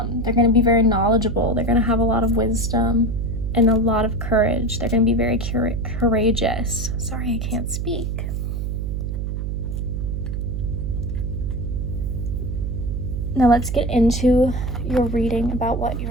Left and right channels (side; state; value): right; noise; hum, 2 dB below the sound